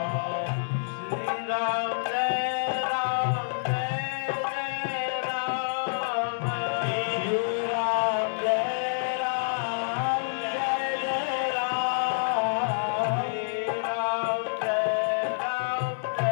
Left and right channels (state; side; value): silent; right; 60 dB below the other